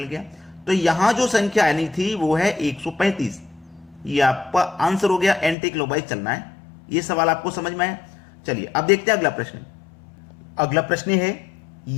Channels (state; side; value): drops out; right; at 5.6 s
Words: गया। तो यहां जो संख्या आनी थी वो है 135। ये आपका आंसर हो गया, एंटी क्लॉकवाइज चलना है। ये सवाल आपको समझ में आया। चलिए अब देखते हैं अगला प्रश्न। अगला प्रश्न है,